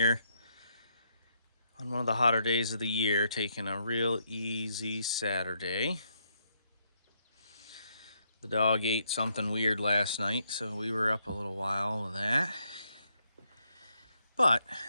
on one of the hotter days of the year, taking a real easy Saturday. The dog ate something weird last night, so we were up a little while with that. But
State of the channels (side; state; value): both; inverted; correlation -0.75